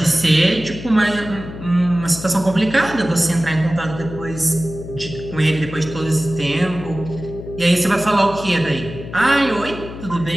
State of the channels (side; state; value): left; noise; hum, 12 dB below the sound